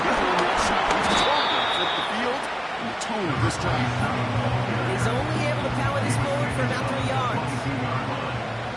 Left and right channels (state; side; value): identical; both; correlation 1.00